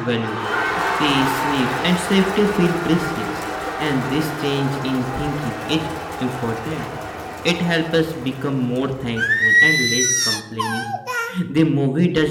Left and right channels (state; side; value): identical; both; correlation 1.00